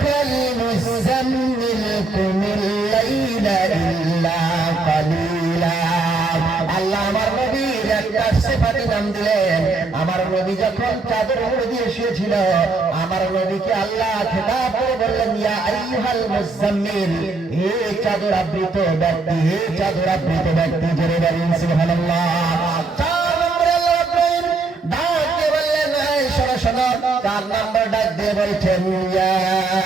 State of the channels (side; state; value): left; quieter; 3.6 dB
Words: মুযাম্মিল কুমিল লাইলা ইল্লা কালিলা। আল্লাহ আমার নবীর একটা সিফাতি নাম দিলেন। আমার নবী যখন চাদর মুড়ি দিয়ে শুয়েছিল, আমার নবীকে আল্লাহ খেতাব করে বললেন, ইয়া আইয়ুহাল মুযাম্মিল, হে চাদর আবৃত ব্যক্তি, হে চাদর আবৃত ব্যক্তি। জোরে বলুন সুবহানাল্লাহ। 4 নম্বরে আল্লাহ রাব্বুল ডাক দিয়ে বললেন, এই শোনো শোনো। 4 নম্বর ডাক দিয়ে বলছেন, ইয়া